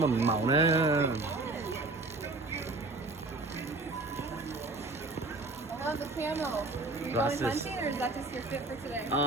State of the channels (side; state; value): left; quieter; 3.1 dB